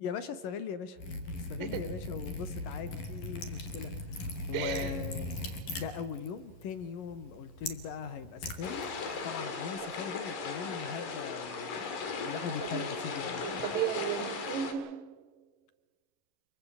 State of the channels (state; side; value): late; right; 11 ms